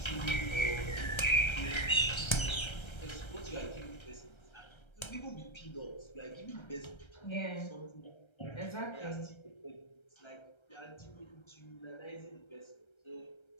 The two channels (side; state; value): right; late; 1.3 ms